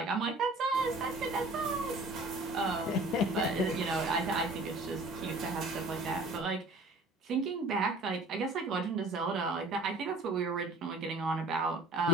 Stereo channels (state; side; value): normal; both; correlation 0.48